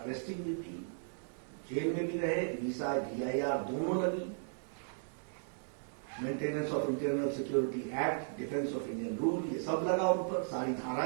भी दी, जेल में भी रहे, मीसा DIR दोनों लगी, maintenance of internal security act, defence of Indian rule, ये सब लगा उन पर, सारी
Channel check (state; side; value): silent; left; digital silence